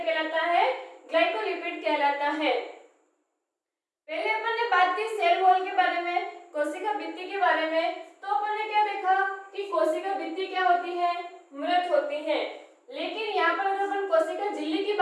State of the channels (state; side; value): identical; both; correlation 1.00